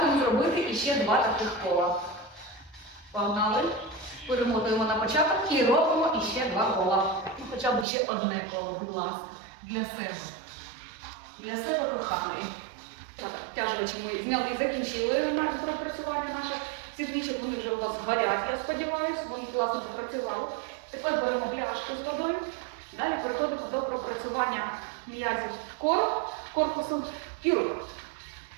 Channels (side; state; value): left; drops out; at 7.9 s